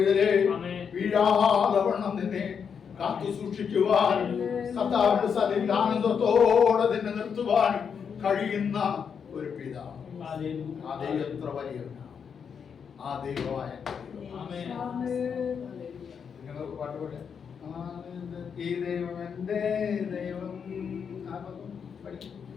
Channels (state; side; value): quieter; right; 6.8 dB